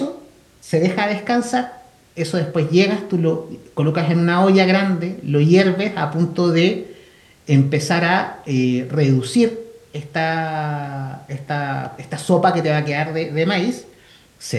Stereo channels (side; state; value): both; identical; correlation 1.00